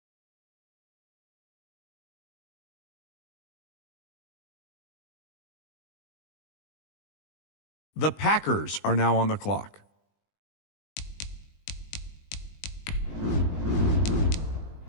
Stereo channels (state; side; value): late; right; 20 ms